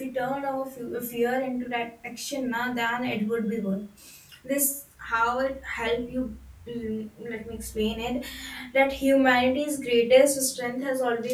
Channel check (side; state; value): both; identical; correlation 1.00